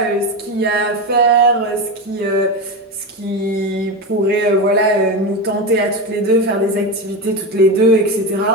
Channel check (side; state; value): both; normal; correlation 0.18